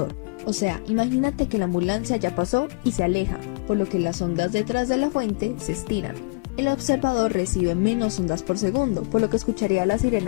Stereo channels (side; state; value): right; quieter; 31.0 dB